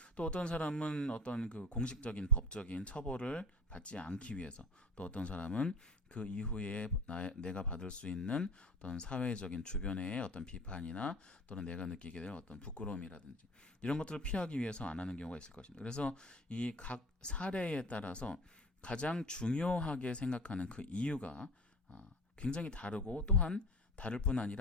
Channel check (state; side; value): normal; both; correlation 0.39